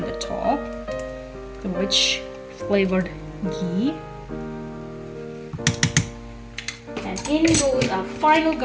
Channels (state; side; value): identical; both; correlation 1.00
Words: the top, which flavored ghee. And in goes our final